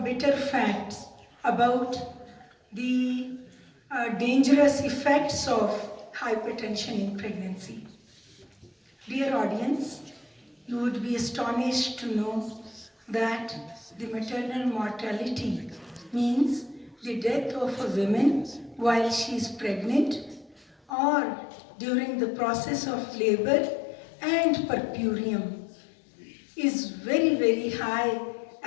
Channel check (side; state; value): right; drops out; at 20.9 s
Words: bitter facts about the dangerous effects of hypertension in pregnancy. Dear audience, you would be astonished to know that the maternal mortality means the death of a woman while she is pregnant or during the process of labor and puerperium is very, very high